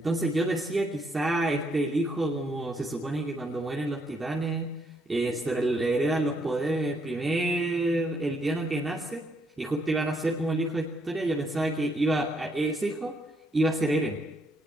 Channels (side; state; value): both; normal; correlation 0.73